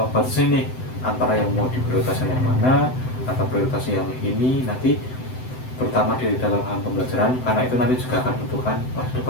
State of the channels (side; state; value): right; late; 7.8 ms